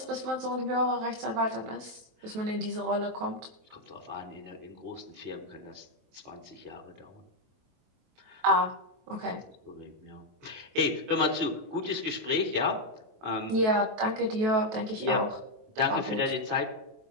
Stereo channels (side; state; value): left; late; 23 ms